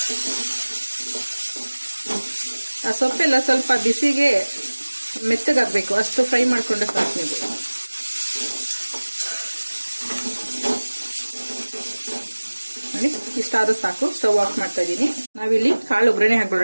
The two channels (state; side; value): inverted; both; correlation -1.00